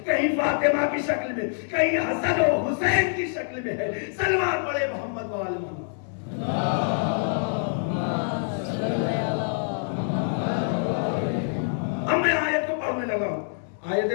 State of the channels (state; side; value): silent; right; digital silence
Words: کہیں فاطمہ کی شکل میں، کہیں حسن و حسین کی شکل میں ہے. صلوات پڑھے محمد وآل محمد. اب میں آیت کو پڑھنے لگا ہوں. آیت